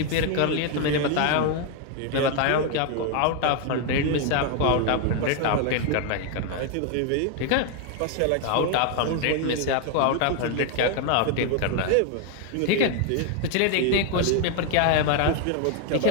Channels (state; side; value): different; both; correlation 0.01